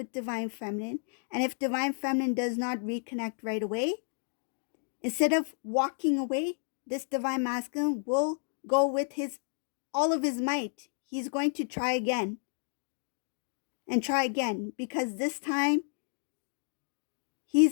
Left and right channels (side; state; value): right; silent; digital silence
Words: divine feminine. And if divine feminine does not reconnect right away, instead of walking away, this divine masculine will go with all of his might. He's going to try again and try again, because this time